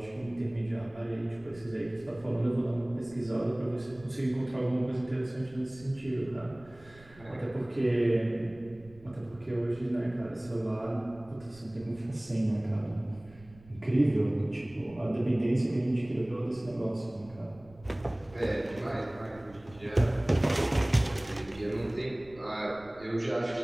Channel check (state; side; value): noise; right; rumble, 23 dB below the sound